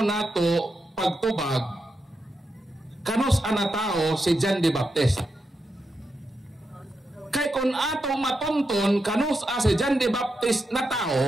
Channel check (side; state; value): both; normal; correlation 0.86